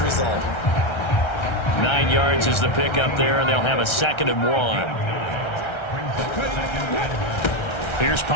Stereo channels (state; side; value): late; right; 1.3 ms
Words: result. 9 yards is the pickup there, and they'll have a 2nd and 1. Here's